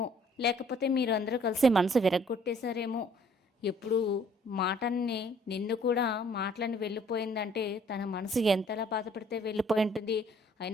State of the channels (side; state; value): both; normal; correlation 0.60